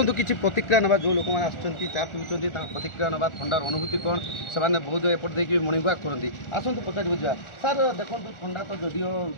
किसी प्रतिक्रिया ना जो लोक मैंने चा पीऊँगी प्रतिक्रिया ना थंडार अनुभूति कौन से बहुत एपट देखिए मर्णिंग वाक करती आसतु पचार बुझा सार देखो ठंडा तो जदिव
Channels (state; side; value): late; right; 1.4 ms